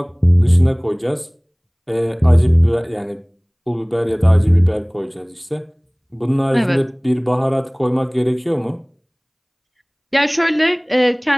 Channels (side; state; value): both; identical; correlation 1.00